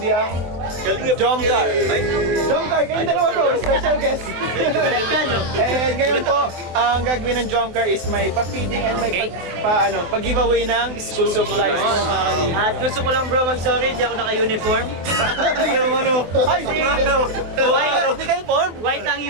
ang Jomcar. Jomcar, kayong dalawa bro, special guest. And ngayon po, ang gagawin ng Jomcar is may pa-feeding and may pag-giveaway ng school supplies po mga kalingap. At gusto ko lang bro mag-sorry, di ako naka-uniform. Yung ay, Hindi ka uniform? White ang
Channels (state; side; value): late; left; 24 ms